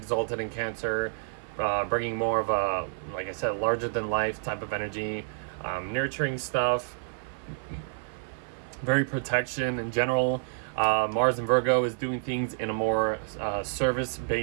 in Cancer, bringing more of a, like I said, larger than life type of energy, nurturing stuff, very protection in general. Mars in Virgo is doing things in a more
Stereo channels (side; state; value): left; silent; 59 dB below the other